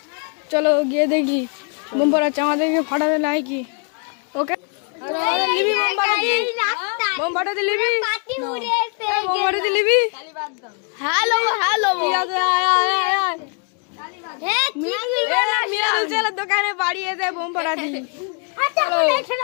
চলো গিয়ে দেখি বোম ফাটাচ্ছে আমাদেরকে ফাটাতে নাই কি। ওকে বোম ফাটাতে লিবি, বোম ফাটাতে লিবি। হ্যালো হ্যালো মিরাজের দোকানে বাড়ি এসে বোম ফাটাচ্ছি।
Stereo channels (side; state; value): right; quieter; 39.3 dB